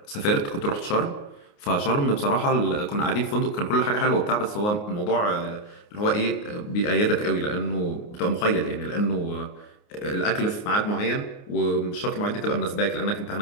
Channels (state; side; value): late; right; 29 ms